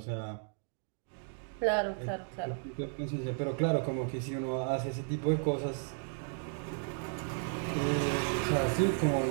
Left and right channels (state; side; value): silent; left; 55 dB below the other